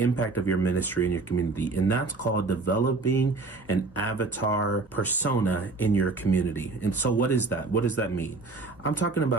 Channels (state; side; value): quieter; left; 3.7 dB